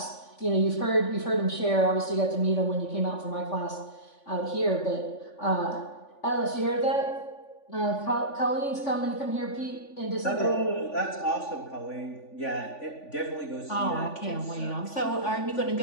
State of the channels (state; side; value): late; right; 3.5 ms